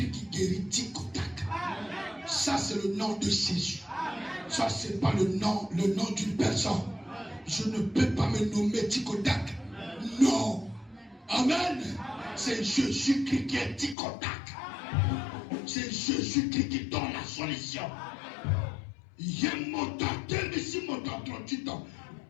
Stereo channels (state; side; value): drops out; right; at 14.0 s